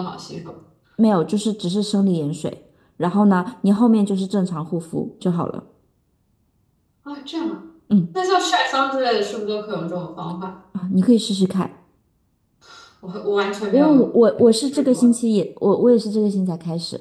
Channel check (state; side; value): identical; both; correlation 1.00